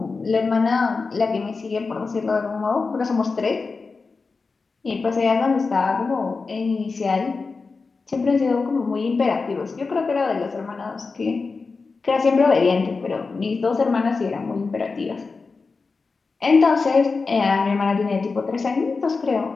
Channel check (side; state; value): right; quieter; 4.3 dB